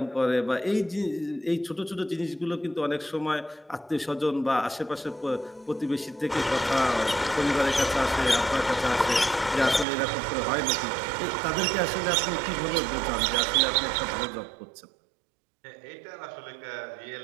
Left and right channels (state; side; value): drops out; left; at 9.9 s